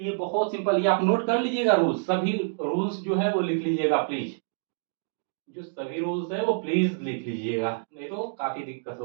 बहुत सिंपल, ये आप नोट कर लीजिएगा, रूल्स, सभी रूल्स जो है वो लिख लीजिएगा प्लीज, जो सभी रूल्स है वो प्लीज लिख लीजिएगा, नहीं तो काफी दिक्कत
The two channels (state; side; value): silent; left; digital silence